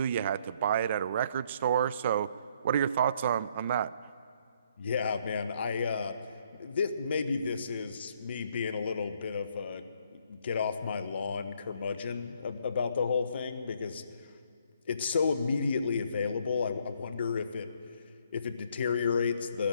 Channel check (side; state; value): both; inverted; correlation -0.67